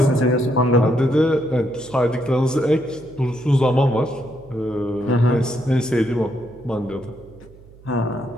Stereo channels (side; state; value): right; noise; hum, 23 dB below the sound